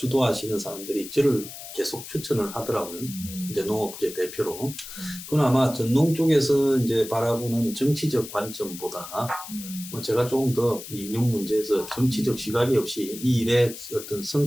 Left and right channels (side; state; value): left; noise; hiss, 12 dB below the sound